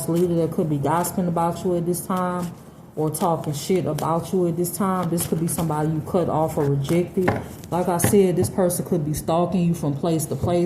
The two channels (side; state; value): both; identical; correlation 1.00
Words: leader that could be gossiping about you at this time, or talking shit about you at this time. This could be somebody you cut off or rejected. Like I said, this person could be stalking you from place to